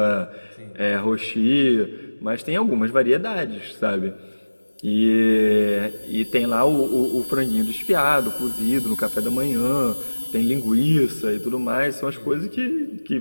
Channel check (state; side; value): inverted; both; correlation -1.00